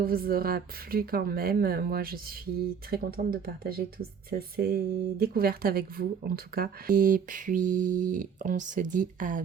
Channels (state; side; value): quieter; left; 6.9 dB